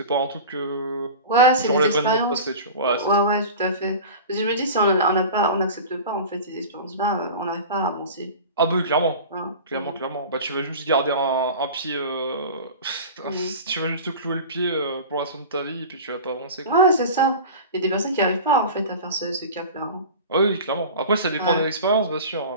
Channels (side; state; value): both; inverted; correlation -0.34